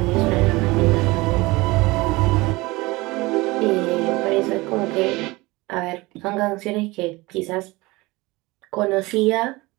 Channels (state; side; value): quieter; left; 22.1 dB